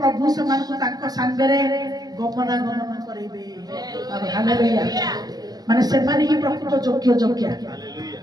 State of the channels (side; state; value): left; late; 0.19 ms